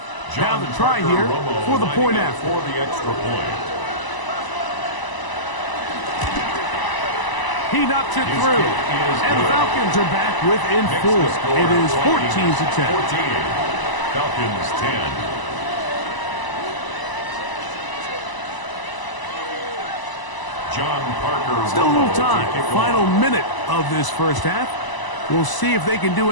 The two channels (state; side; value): late; right; 1.0 ms